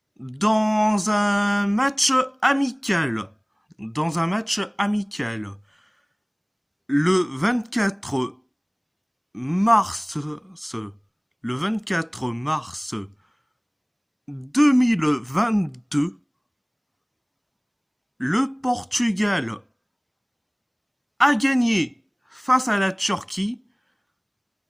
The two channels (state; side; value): identical; both; correlation 1.00